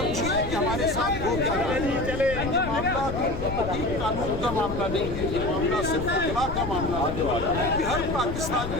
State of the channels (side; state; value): left; noise; rumble, 7 dB below the sound